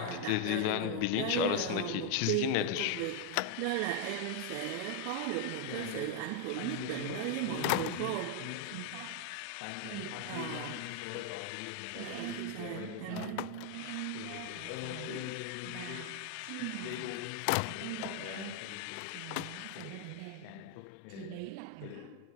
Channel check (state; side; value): different; both; correlation 0.01